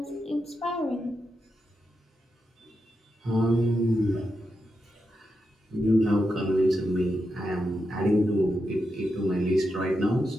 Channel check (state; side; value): normal; both; correlation 0.87